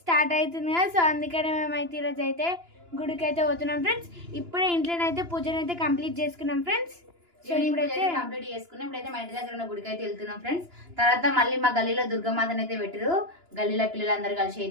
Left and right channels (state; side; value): late; left; 2.9 ms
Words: స్టార్ట్ అవుతుంది కదా. సో అందుకనే మేమైతే ఈరోజు అయితే గుడికి అయితే పోతున్నాం ఫ్రెండ్స్. ఇప్పుడే ఇంట్లోనైతే పూజనైతే కంప్లీట్ చేసుకున్నాం ఫ్రెండ్స్. సో ఇప్పుడైతే కంప్లీట్ చేసుకున్నాం. ఇప్పుడైతే మా ఇంటి దగ్గర ఉన్న గుడికి అయితే వెళ్తున్నాం ఫ్రెండ్స్. తర్వాత మళ్ళీ మా గల్లీలో దుర్గమాతను అయితే పెట్టారు. గల్లీలో పిల్లలందరూ కలిసి